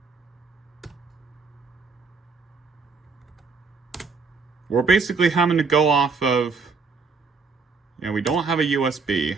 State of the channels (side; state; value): left; quieter; 4.8 dB